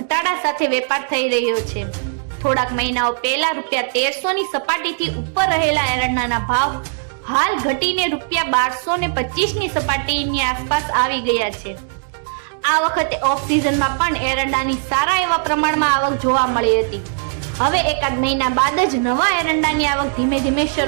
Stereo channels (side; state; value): left; silent; digital silence